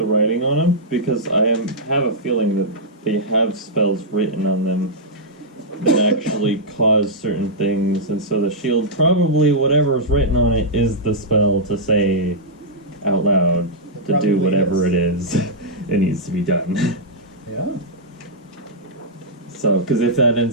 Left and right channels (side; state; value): both; normal; correlation -0.09